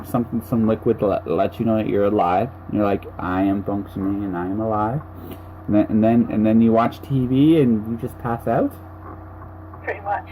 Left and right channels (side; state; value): both; identical; correlation 1.00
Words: some liquid to let you know that you're alive. You're like, I am functioning and I am alive. And then you watch TV and you just pass out? Pretty much.